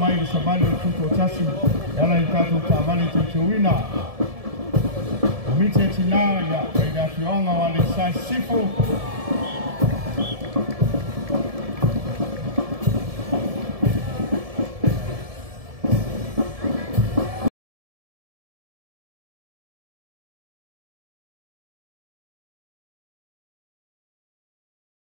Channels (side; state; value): left; late; 1.7 ms